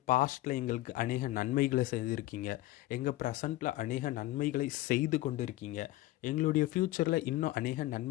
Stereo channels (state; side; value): quieter; right; 17.0 dB